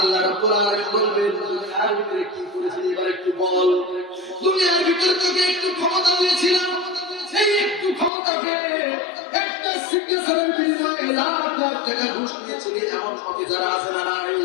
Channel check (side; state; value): right; drops out; at 8.1 s